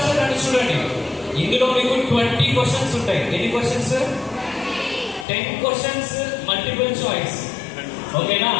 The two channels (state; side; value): drops out; right; at 5.2 s